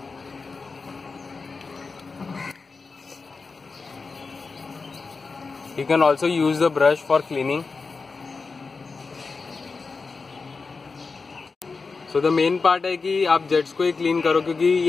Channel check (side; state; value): right; quieter; 4.4 dB